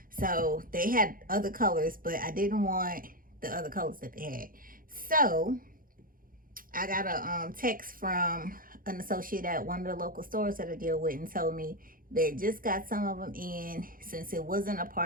So, they had other colors, but I didn't want the other colors that they had. So, I got a text from an associate at one of the local stores that I deal with and told me they just got some of them in. Since it wasn't a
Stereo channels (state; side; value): late; left; 0.41 ms